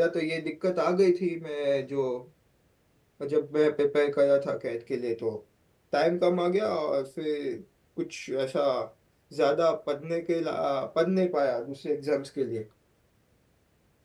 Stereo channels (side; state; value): both; identical; correlation 1.00